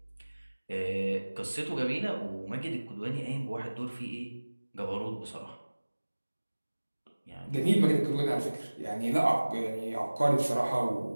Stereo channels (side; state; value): both; inverted; correlation -1.00